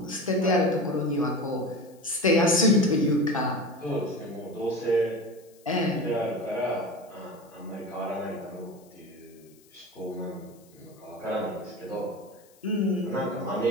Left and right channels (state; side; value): noise; left; hiss, 29 dB below the sound